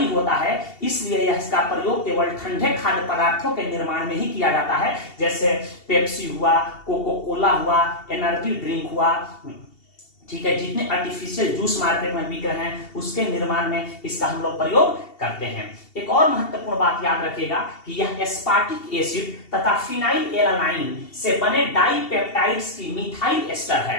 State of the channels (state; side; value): late; right; 2.7 ms